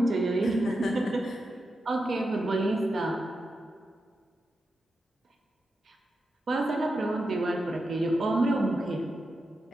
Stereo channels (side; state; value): both; normal; correlation 0.88